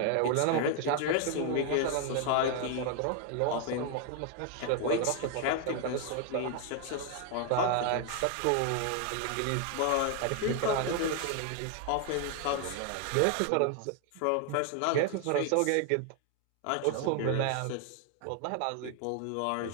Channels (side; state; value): both; different; correlation 0.00